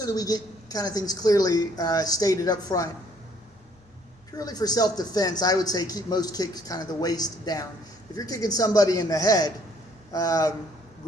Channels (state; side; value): normal; both; correlation 0.63